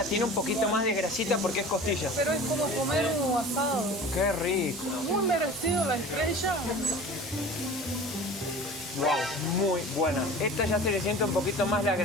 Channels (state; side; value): normal; both; correlation 0.39